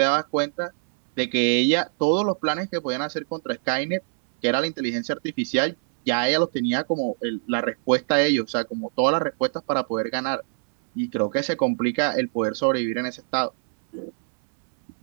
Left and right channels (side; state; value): left; silent; 62 dB below the other